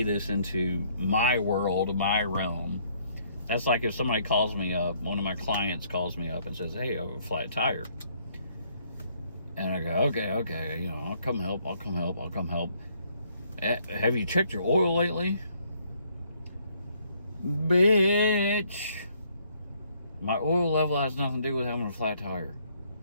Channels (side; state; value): both; inverted; correlation -0.67